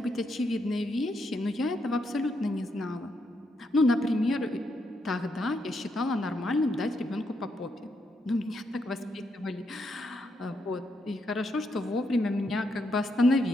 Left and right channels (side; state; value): both; normal; correlation 0.79